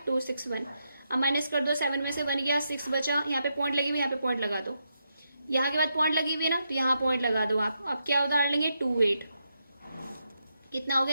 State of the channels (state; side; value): inverted; both; correlation -0.83